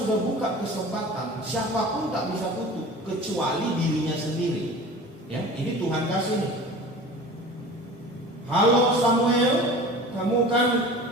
buka kesempatan, siapapun tak bisa tutup kecuali dirinya sendiri. Ya, ini Tuhan kasih nih. Halo Samuel, kamu kan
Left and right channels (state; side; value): normal; both; correlation 0.39